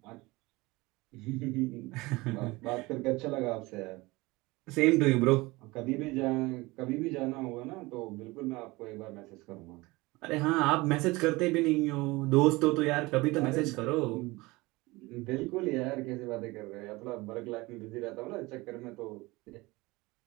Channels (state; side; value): quieter; left; 22.1 dB